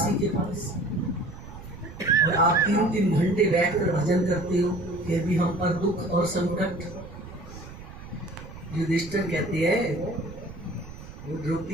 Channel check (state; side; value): noise; right; rumble, 15 dB below the sound